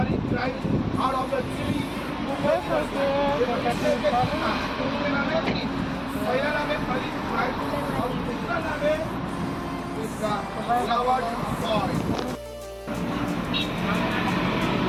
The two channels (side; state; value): both; identical; correlation 1.00